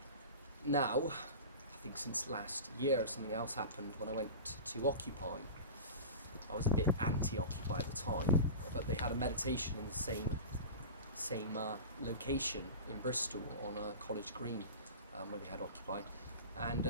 now, I think since last year, something else happened when I went to Occupy. I was a bit anti-Occupy at the time, but they had a meditation in the same location in Bristol on College Green, where they had Occupy.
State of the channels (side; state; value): both; inverted; correlation -0.31